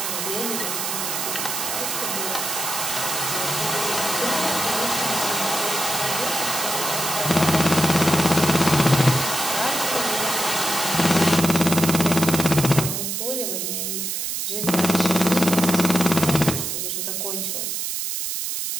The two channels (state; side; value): noise; right; hiss, 2 dB below the sound